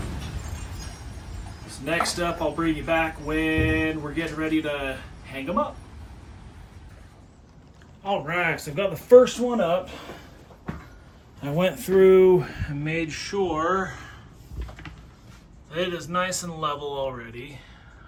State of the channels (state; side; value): identical; both; correlation 1.00